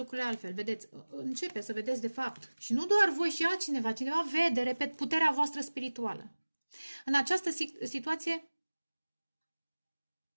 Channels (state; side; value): inverted; both; correlation -1.00